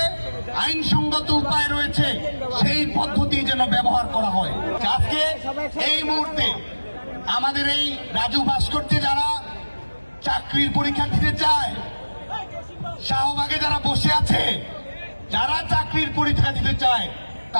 আইনসঙ্গত উপায় রয়েছে, সেই পদ্ধতি যেন ব্যবহার করা হয়। আজকে এই মুহূর্তে আমাদের এই রাজু ভাস্কর্যে যারা চাকরির পরীক্ষা দিতে চায়, শাহবাগে যারা বসে আছে, যারা চাকরির পরীক্ষা দিতে চায়,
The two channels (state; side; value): inverted; both; correlation -1.00